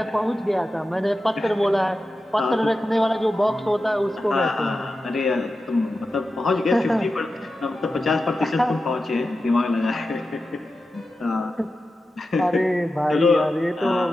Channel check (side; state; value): both; normal; correlation 0.92